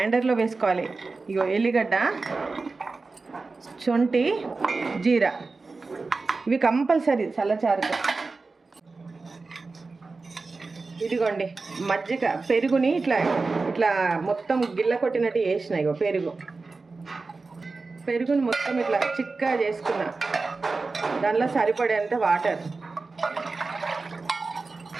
వేసుకోవాలి. ఇగో ఎల్లిగడ్డ, శొంఠి, జీరా, ఇవి కంపల్సరీ సల్లచారుకు. ఇదిగోండి మజ్జిగ, పెరుగుని ఇట్లా ఇట్లా మొత్తం గిల్ల కొట్టినట్టు వేసిన. ఇగో పెరుగుని మొత్తం ఇట్లా చిక్కగా చేసుకున్నా. దానిలో సరిపడేంత వాటర్,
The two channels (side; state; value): left; quieter; 3.9 dB